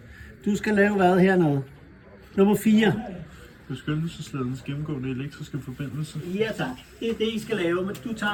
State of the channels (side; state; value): both; identical; correlation 1.00